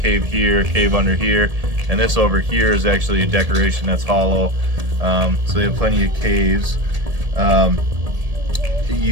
here, a cave under here. And this over here is actually a decoration that's hollow. So they have plenty of caves.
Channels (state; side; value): late; left; 1.7 ms